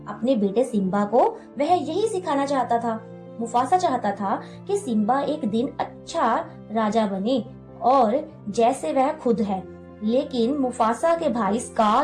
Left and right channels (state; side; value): identical; both; correlation 1.00